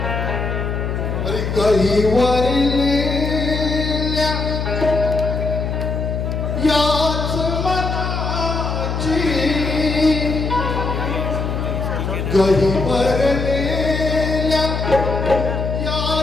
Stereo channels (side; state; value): left; noise; hum, 2 dB below the sound